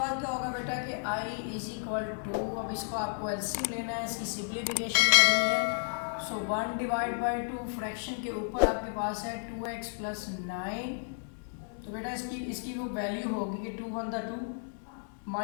क्या होगा बेटा कि i इज इक्वल टू, अब इसको आपको एलसीएम लेना है, इसकी सिंप्लीफिकेशन करनी है। सो 1 डिवाइड बाई 2 फ्रैक्शन के ऊपर आपके पास है 2x प्लस 9। तो बेटा इसकी वो वैल्यू होगी कि 2 1 द 2,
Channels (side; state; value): right; silent; 56 dB below the other